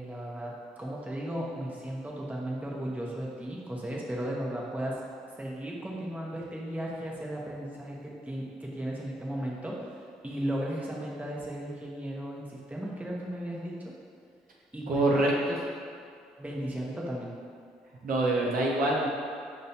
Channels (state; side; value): normal; both; correlation 0.73